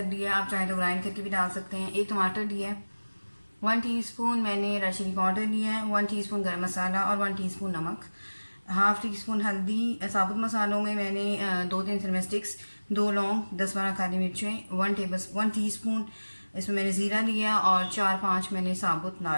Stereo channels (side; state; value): both; inverted; correlation -1.00